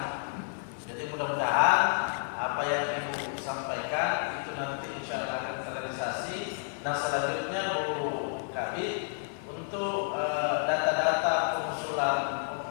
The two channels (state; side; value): silent; right; 57 dB below the other